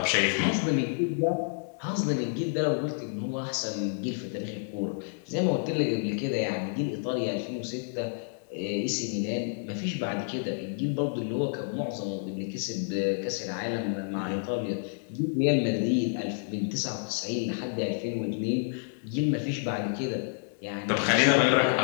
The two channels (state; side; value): silent; right; digital silence